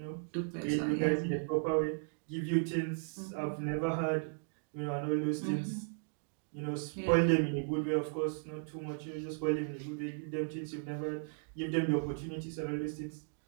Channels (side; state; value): left; silent; digital silence